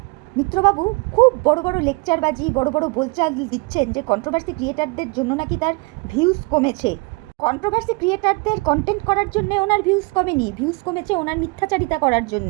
মিত্রবাবু খুব বড় বড় লেকচারবাজি, বড় বড় বোলচাল দিচ্ছেন যে কন্ট্রোভার্সি ক্রিয়েটারদের জন্য নাকি তার ভিউজ কমেছে। কন্ট্রোভার্সি ক্রিয়েটারদের কন্টেন্ট করার জন্যে ওনার ভিউজ কমেনি, ভিউজ কমেছে ওনার মিথ্যাচারিতা করার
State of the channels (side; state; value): left; quieter; 28.8 dB